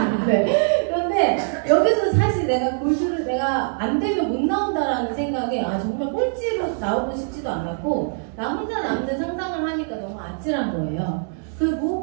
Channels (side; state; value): left; silent; digital silence